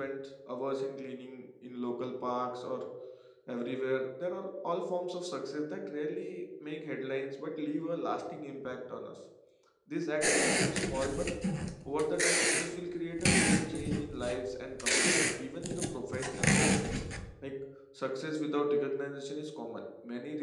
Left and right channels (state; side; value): identical; both; correlation 1.00